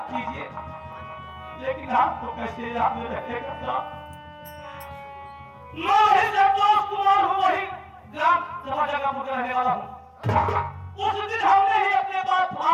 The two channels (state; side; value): identical; both; correlation 1.00